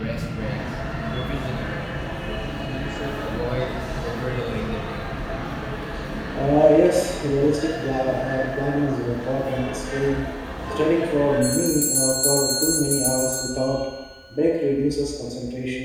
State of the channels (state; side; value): identical; both; correlation 1.00